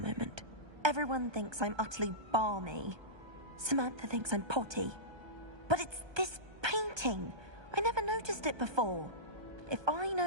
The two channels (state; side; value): late; left; 1.2 ms